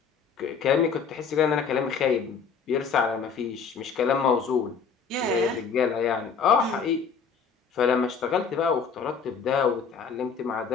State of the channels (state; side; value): quieter; right; 6.0 dB